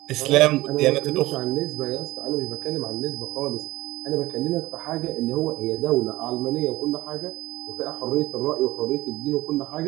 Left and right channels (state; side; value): quieter; left; 18.3 dB